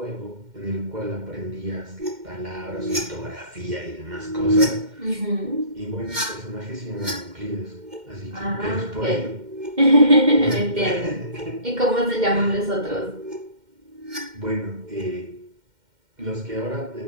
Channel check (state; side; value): late; left; 2.1 ms